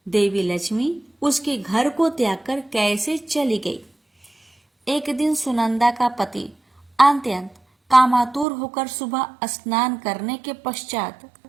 देवी लक्ष्मी उसके घर को त्याग कर कैसे चली गई। एक दिन सुनंदा का पति अत्यंत कामातुर होकर सुबह स्नान करने के पश्चात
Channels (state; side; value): drops out; left; at 8.5 s